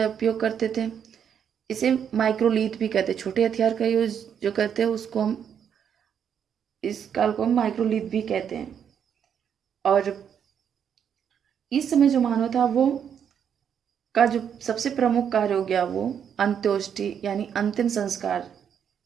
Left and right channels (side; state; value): left; quieter; 8.2 dB